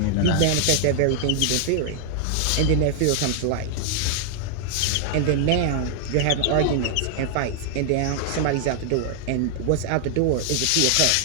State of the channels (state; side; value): different; both; correlation 0.00